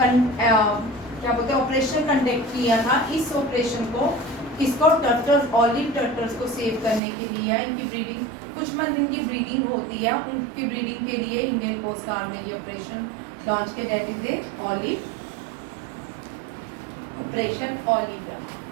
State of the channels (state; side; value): drops out; left; at 7.0 s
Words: क्या बोलते हैं ऑपरेशन कंडक्ट किया था। इस ऑपरेशन को किसको टर्टल्स ऑलिव टर्टल्स को सेव करने के लिए इनकी ब्रीडिंग कुछ मंथ इनकी ब्रीडिंग होती है, उनकी ब्रीडिंग के लिए इंडियन कोस्ट गार्ड ने ये ऑपरेशन लॉन्च किया, that is a olive operation olive.